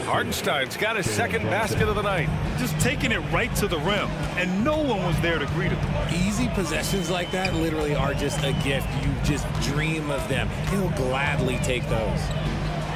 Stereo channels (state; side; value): identical; both; correlation 1.00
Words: Hartenstein's got his second basket of the night. Just taking it right to the rim, and no one was there to greet him. Easy possessions like that literally are just a gift. You just dream of them. He'll gladly take those.